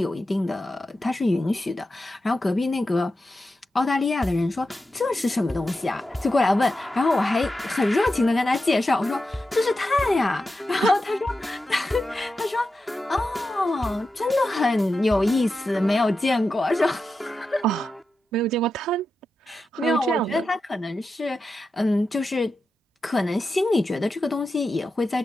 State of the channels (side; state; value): both; normal; correlation 0.90